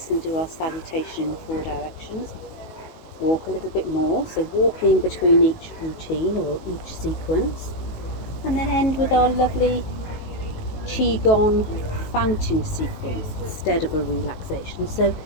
and do our salutation in 4 directions. Walk a little bit more, so walking between each routine or each sequence. And then end with our lovely qigong fountain sequence instead of a relaxation. So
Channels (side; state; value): right; late; 19 ms